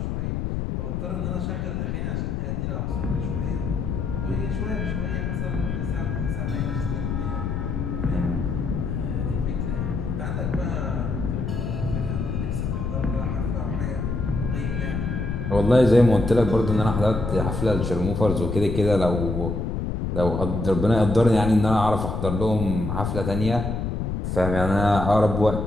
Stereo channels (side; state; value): left; noise; rumble, 2 dB below the sound